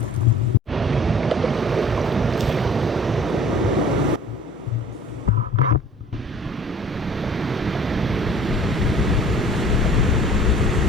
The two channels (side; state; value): both; normal; correlation 0.49